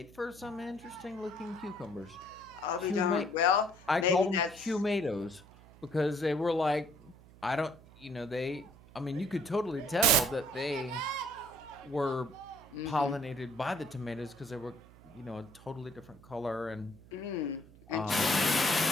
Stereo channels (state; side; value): noise; right; hum, 22 dB below the sound